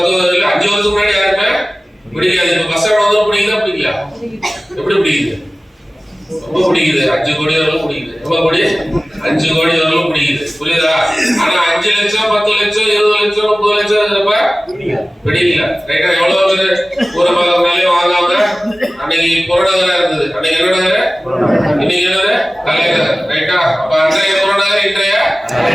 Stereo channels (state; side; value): normal; both; correlation 0.97